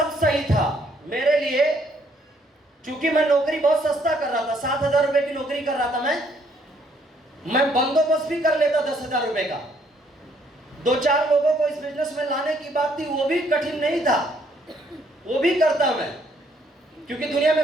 सही था मेरे लिए, क्योंकि मैं नौकरी बहुत सस्ता कर रहा था। 7,000 रुपए की नौकरी कर रहा था मैं बंदोबस्त भी कर लेता 10,000 रुपए का। 2-4 लोगों को इस बिजनेस में लाने की बात थी, वो भी कठिन नहीं था, वो भी करता मैं, क्योंकि दुनिया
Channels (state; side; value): normal; both; correlation 0.67